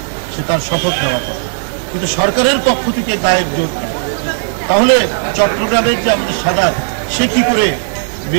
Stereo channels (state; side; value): silent; left; digital silence